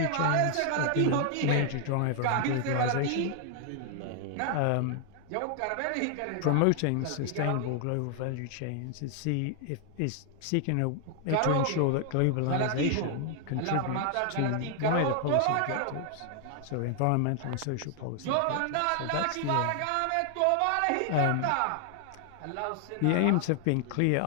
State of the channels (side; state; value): both; different; correlation 0.00